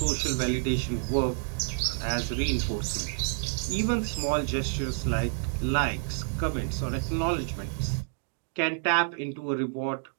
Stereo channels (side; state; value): left; silent; 59 dB below the other